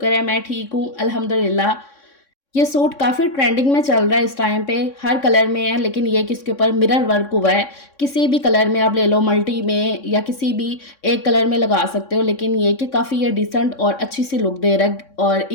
है मैं ठीक हूँ अल्हम्दुलिल्लाह। ये सूट काफ़ी ट्रेंडिंग में चल रहा है इस टाइम पे, हर कलर में है, लेकिन ये कि इसके ऊपर मिरर वर्क हुआ है। किसी भी कलर में आप ले लो, मल्टी में या किसी भी एक कलर में लगा सकते हो, लेकिन ये कि काफ़ी ये डिसेंट और अच्छी सी लुक दे रहा है और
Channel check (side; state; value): right; late; 3.6 ms